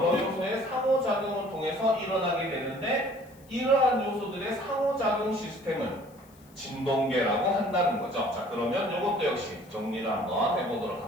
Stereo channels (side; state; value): left; noise; hiss, 28 dB below the sound